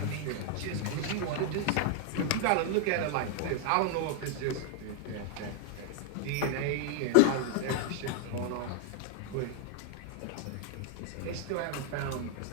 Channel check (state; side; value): different; both; correlation 0.00